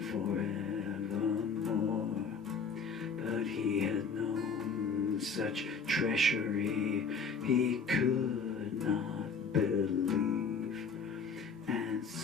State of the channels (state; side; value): quieter; right; 5.0 dB